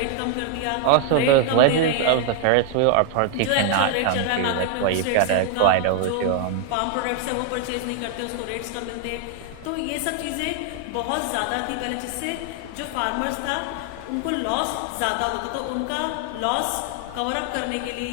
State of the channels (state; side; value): different; both; correlation 0.00